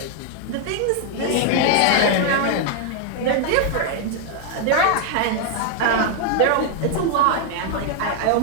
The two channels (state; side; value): different; both; correlation 0.00